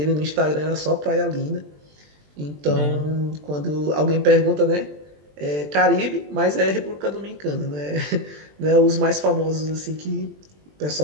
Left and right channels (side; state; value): left; late; 20 ms